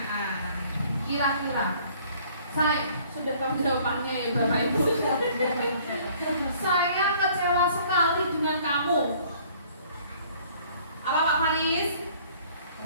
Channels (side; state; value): both; inverted; correlation -0.57